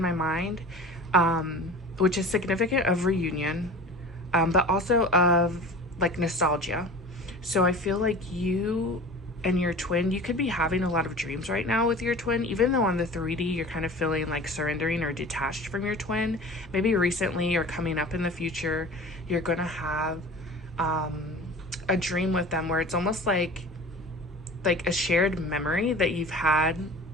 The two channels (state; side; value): normal; both; correlation 0.38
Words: my mind, which is significant of reunion, but also of like nostalgia. So I feel like you and your twin, you could be having a lot of dreams right now with your twin, even though on the 3D you're kind of feeling like surrendering or detached from your twin. Maybe recently or coming up in the future, you're gonna have um, a dream with them where it's almost like a shared memory that you've had